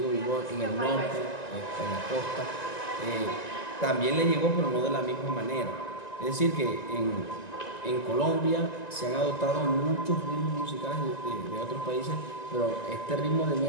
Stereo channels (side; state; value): right; late; 1.9 ms